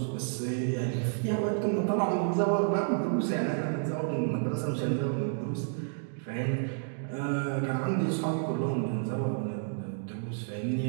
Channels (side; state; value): left; silent; digital silence